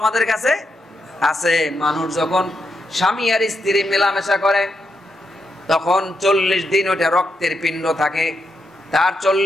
কাছে আছে। মানুষ যখন স্বামী আর স্ত্রী মেলামেশা করে তখন 40 দিন ওটা রক্তের পিণ্ড থাকে, তার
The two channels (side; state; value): both; normal; correlation 0.83